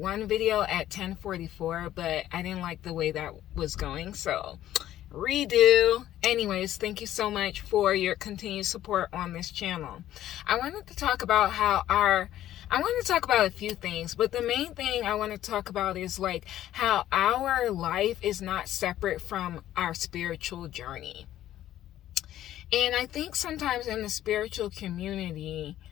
video at 10:44, but I didn't like the way that was going, so redo. Anyways, thank you so much for your continued support on this channel. I wanted to talk about a few things, but the main thing I want to talk about is like how our life is not separate from our spiritual journey. And I think sometimes in the spiritual community,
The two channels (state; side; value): quieter; right; 12.8 dB